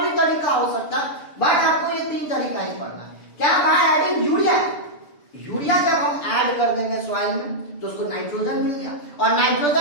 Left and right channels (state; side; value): late; right; 6.9 ms